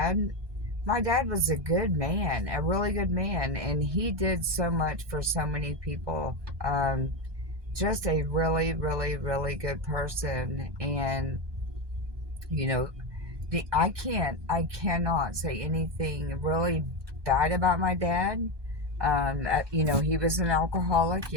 was a good man, a really good man, and he did so much for so many people. Just a really, really, really good person. And, you know, I cannot say anything really bad about my dad. He was an alcoholic,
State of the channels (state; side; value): late; left; 1.2 ms